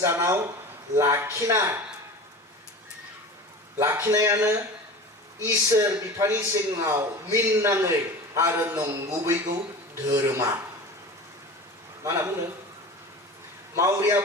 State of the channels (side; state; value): both; normal; correlation 0.34